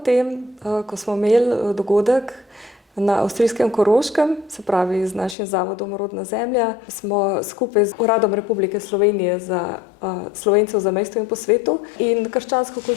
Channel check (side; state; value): right; drops out; at 5.4 s